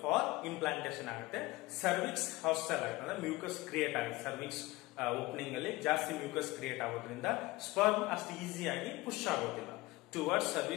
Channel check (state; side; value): quieter; right; 20.8 dB